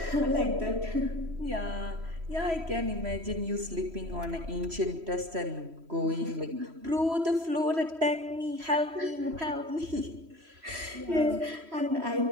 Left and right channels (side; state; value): left; late; 3.1 ms